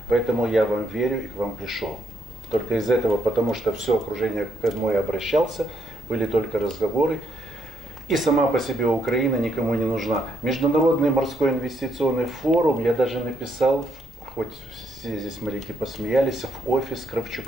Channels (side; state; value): both; normal; correlation 0.76